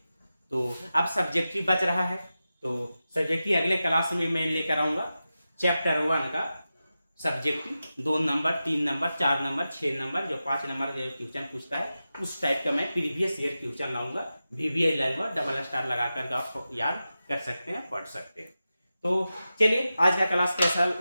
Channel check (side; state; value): both; inverted; correlation -0.93